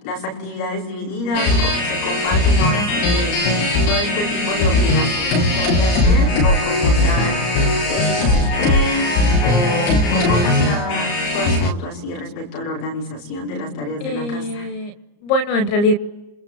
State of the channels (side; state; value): right; late; 34 ms